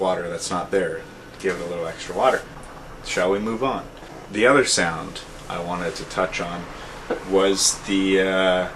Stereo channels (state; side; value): identical; both; correlation 1.00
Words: that's not there. Give it a little extra water. Shall we move on? The other sound I wanted to touch on was the